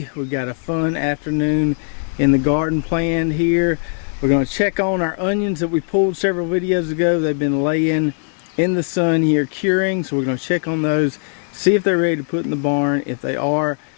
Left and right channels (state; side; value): silent; right; digital silence